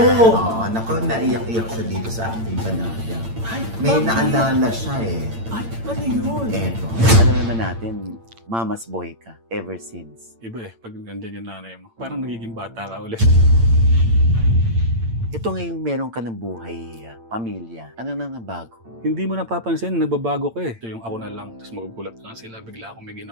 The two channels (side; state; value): left; late; 8.8 ms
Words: Naku, naiyak-iyak siya dito sa aking panayam. May naalala siya Ay, ano yun? Eto. Alam naman natin, mama's boy ka ever since. Iba pag nandiyan yung nanay mo, parang nagiging bata ka ulit. Ito ngayong meron ka ng buhay, pamilya. Ano nang nabago? Hindi mo napapansin, nagbabago ka Ito yung ako na lang, tapos magugulat lang sila, bigla akong may